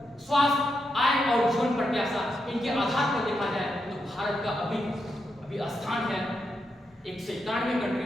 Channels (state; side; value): normal; both; correlation 0.84